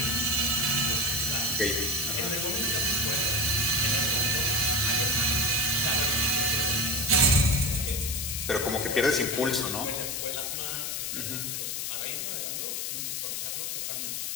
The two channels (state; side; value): noise; left; hiss, 3 dB below the sound